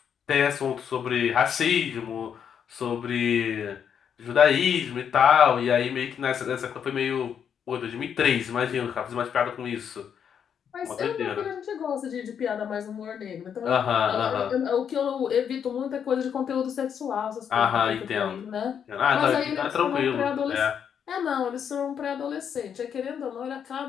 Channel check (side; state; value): right; quieter; 7.9 dB